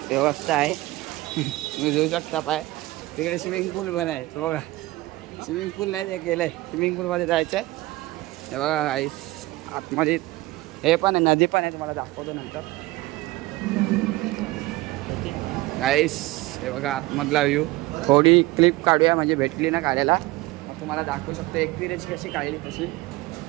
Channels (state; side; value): quieter; left; 19.6 dB